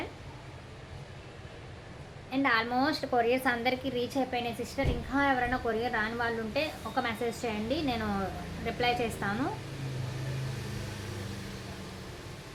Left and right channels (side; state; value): both; identical; correlation 1.00